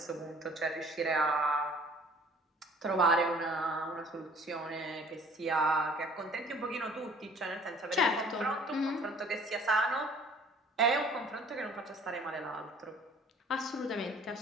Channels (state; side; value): normal; both; correlation 0.53